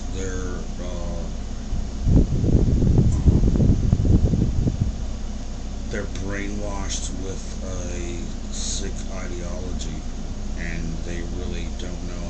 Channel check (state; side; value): identical; both; correlation 1.00